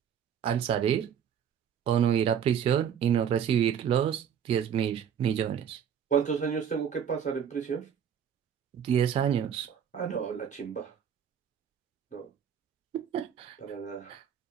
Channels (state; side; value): quieter; left; 8.5 dB